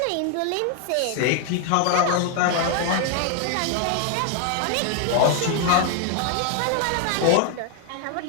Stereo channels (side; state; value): both; different; correlation 0.00